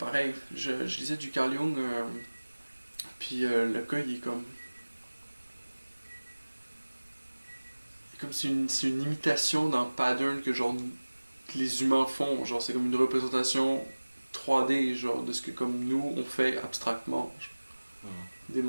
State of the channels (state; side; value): inverted; both; correlation -1.00